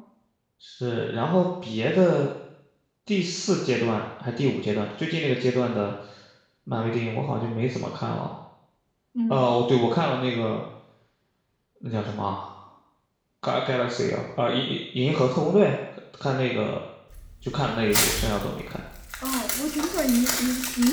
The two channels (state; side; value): identical; both; correlation 1.00